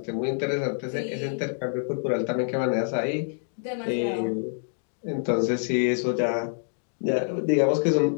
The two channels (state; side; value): silent; right; 60 dB below the other